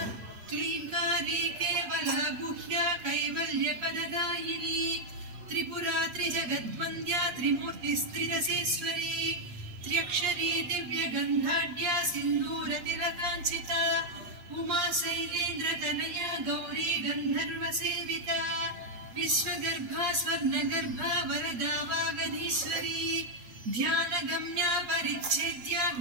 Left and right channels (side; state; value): left; late; 8.5 ms